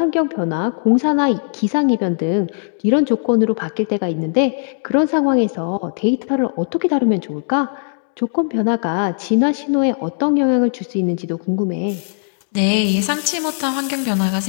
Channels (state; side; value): silent; right; digital silence